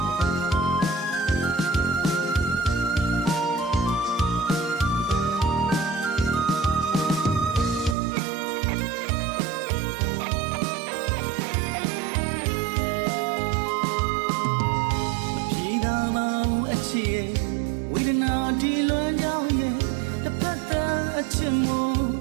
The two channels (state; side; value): drops out; left; at 8.0 s